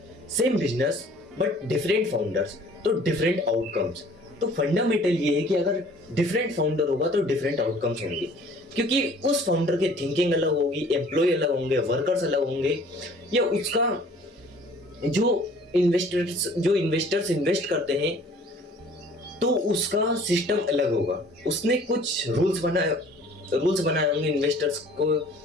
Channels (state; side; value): normal; both; correlation 0.52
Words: same business but different founders तो डिफरेंट आउटकम्स। तो फंडामेंटल ये है कि अगर डिफरेंट फाउंडर होगा तो डिफरेंट आउटकम्स होंगे, क्योंकि उस फाउंडर की थिंकिंग अलग होगी, एम्प्लॉय अलग होंगे, वर्कर्स अलग होंगे, या उसका जो इन्वेस्टर्स इन्वेस्ट करते हैं तो उसका सिस्टम अलग होगा। उसने कुछ रूल्स बनाए होंगे इन्वेस्टर्स